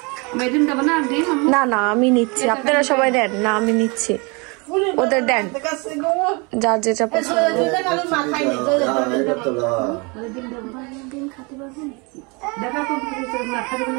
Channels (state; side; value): quieter; left; 29.6 dB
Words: না না আমি নিচ্ছি, আপনারা সবাই দেন না, আমি নিচ্ছি, ওদের দেন যার যেটা পছন্দ।